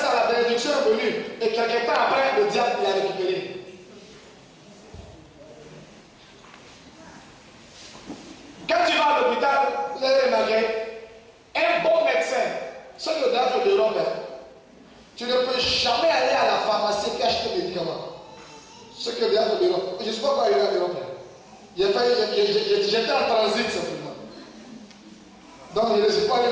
la bénédiction est venue. Et quelques temps après, le diable l'a récupéré. Quand tu vas à l'hôpital, vous allez remarquer, un bon médecin, ce que le diable de l'homme, tu ne peux jamais aller à la pharmacie et acheter des médicaments. Ce que le diable de l'homme. Je ne sais pas quoi il y a de l'homme. J'étais en transit simplement. Donc il ne s'est pas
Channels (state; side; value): identical; both; correlation 1.00